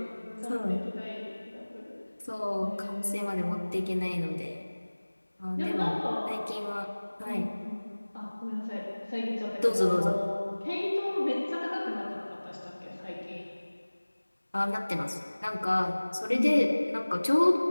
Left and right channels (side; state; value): both; inverted; correlation -1.00